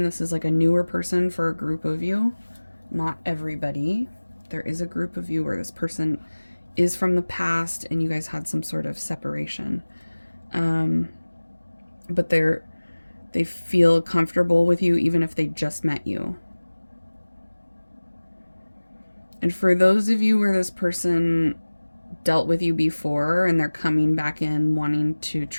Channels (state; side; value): inverted; both; correlation -1.00